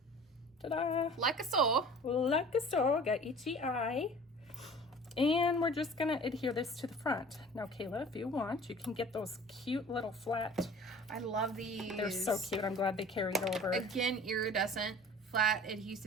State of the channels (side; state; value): both; normal; correlation 0.44